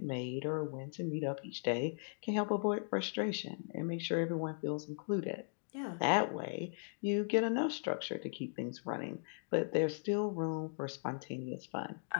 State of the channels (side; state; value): right; silent; digital silence